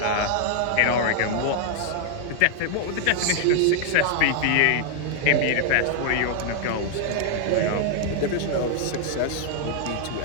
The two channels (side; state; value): both; different; correlation 0.00